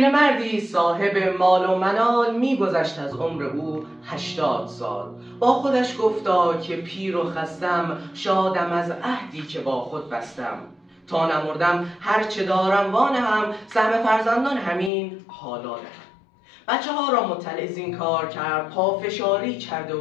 صاحب مال و منال می‌گذشت از عمر او 80 سال. با خودش گفتا که پیر و خستم، شادم از عهدی که با خود بستم. تا نمردم هرچه دارم وانهم، سهم فرزندان همین حالا دهم. بچه ها را مطلع زین کار کرد، پافشاری کرد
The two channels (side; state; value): right; drops out; at 14.9 s